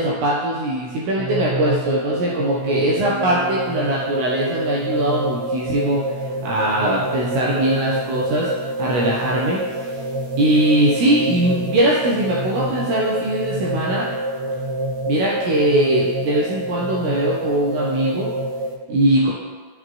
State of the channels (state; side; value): late; left; 16 ms